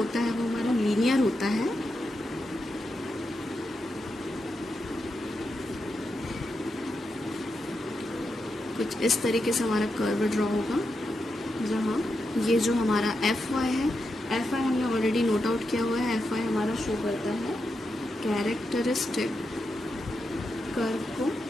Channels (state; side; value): normal; both; correlation 0.86